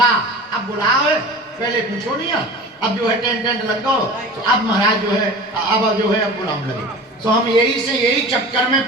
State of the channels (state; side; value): normal; both; correlation 0.37